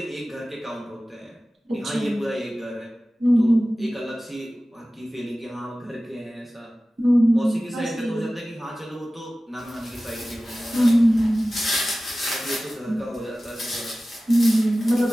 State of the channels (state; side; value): normal; both; correlation 0.96